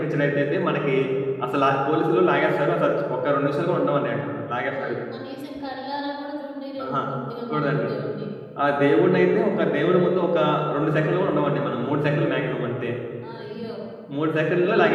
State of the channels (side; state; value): both; identical; correlation 1.00